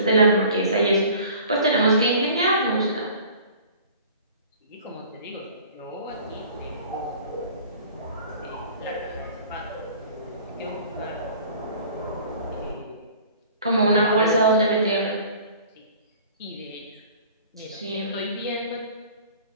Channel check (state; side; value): inverted; both; correlation -0.47